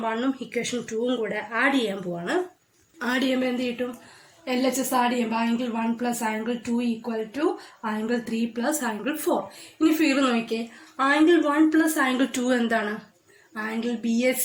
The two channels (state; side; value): identical; both; correlation 1.00